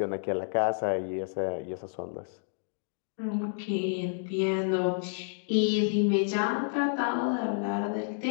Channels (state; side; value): silent; right; digital silence